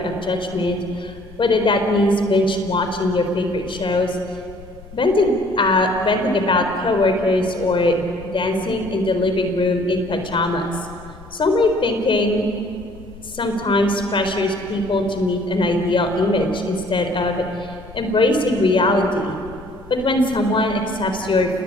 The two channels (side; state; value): left; noise; rumble, 19 dB below the sound